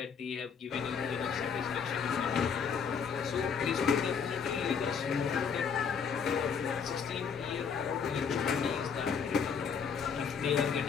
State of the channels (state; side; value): quieter; right; 6.4 dB